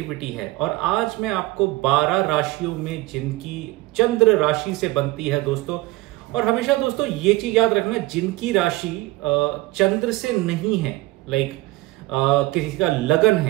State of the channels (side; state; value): left; quieter; 19.5 dB